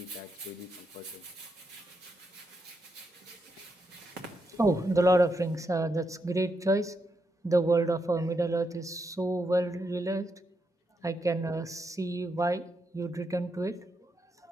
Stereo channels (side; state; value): both; normal; correlation 0.82